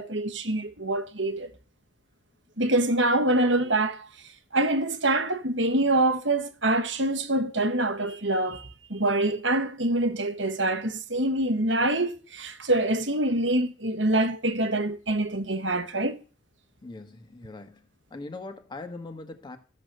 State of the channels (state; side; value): normal; both; correlation 0.03